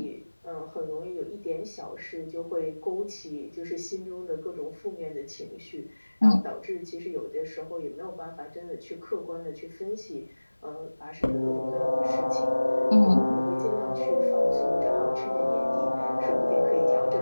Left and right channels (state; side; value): inverted; both; correlation -1.00